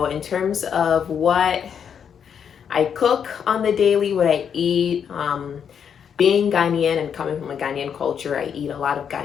in terms of what I cook on the daily, what I eat. Being Ghanaian and coming from a Ghanaian culture, I eat a lot of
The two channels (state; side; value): quieter; right; 7.7 dB